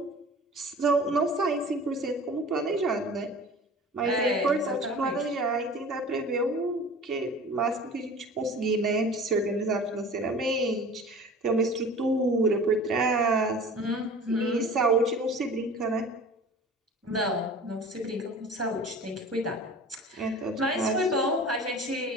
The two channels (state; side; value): normal; both; correlation 0.40